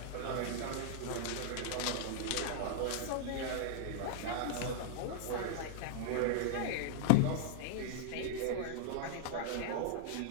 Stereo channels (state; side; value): different; both; correlation -0.01